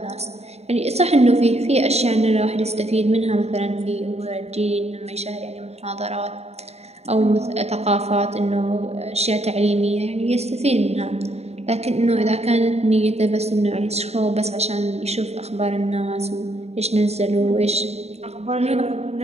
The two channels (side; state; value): left; late; 0.31 ms